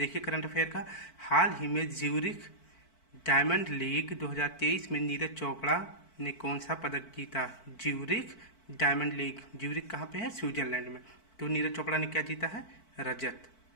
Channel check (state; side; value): late; right; 4.5 ms